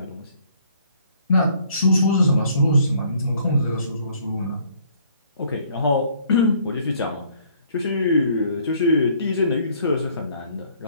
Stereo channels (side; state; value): both; inverted; correlation -0.61